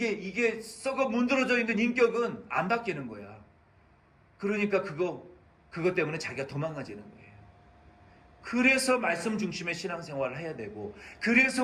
썩어 문드러져 있는 인격은 안 바뀌는 거야. 그러니까 그것 때문에 자기가 도망가지는 거예요. 그래서 말씀 중심의 신앙생활을 해야 되고,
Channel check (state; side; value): identical; both; correlation 1.00